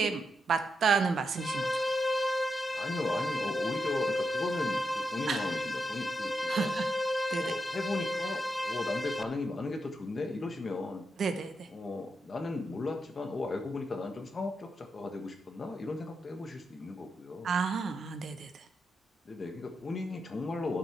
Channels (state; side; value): normal; both; correlation 0.85